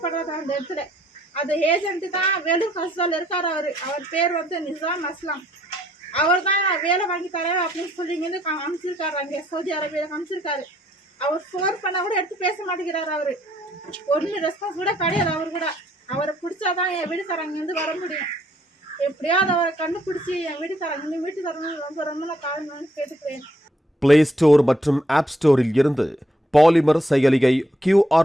அந்த இடத்துல. அந்த ஏஜென்ட்டு தான் வேலூர் ஹாஸ்டலில் இருக்கார். அவர் பேர் வந்து நிசாம் அஸ்லாம். அவர் தான் வேலை வாங்கி தரேன் அப்படின்னு சொல்லி இங்கேருந்து அனுப்பிச்சிருக்காரு. அங்கே சவுதி அரேபியாவில் அனுப்பிச்சிருக்காரு. அவர் ஃபோன் பண்ணால் கூட எடுத்து பேச மாட்டேங்கிறாரு. அவர் ஒன்றும் ரெஸ்பான்ஸ் கூட கிடையாது. அவர் கூட அவரை பிடிச்சாதான் என் வீட்டுக்காரங்கேருந்து வர முடியும். எப்படியாவது அவரை கண்டுபிடிச்சி என் வீட்டுக்காரங்க வீட்டுக்காரங்க ரொம்ப ரொம்ப நான் காரணம் கேட்டுக்கிறேன். பிளே ஸ்டோர் மற்றும் ஆப் ஸ்டோரில் இருந்து பாலிமர் செயலியை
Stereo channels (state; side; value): normal; both; correlation 0.70